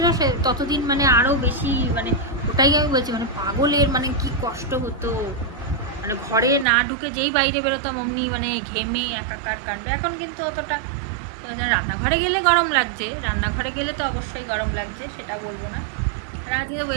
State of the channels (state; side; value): drops out; left; at 6.7 s